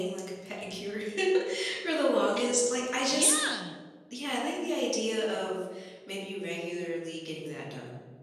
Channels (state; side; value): identical; both; correlation 1.00